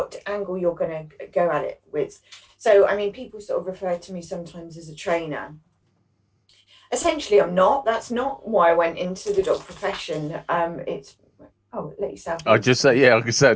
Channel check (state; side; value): identical; both; correlation 1.00